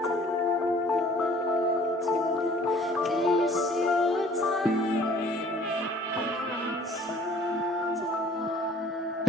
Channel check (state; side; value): normal; both; correlation 0.55